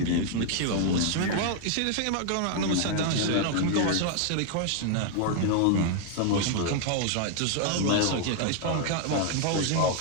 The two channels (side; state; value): both; different; correlation 0.00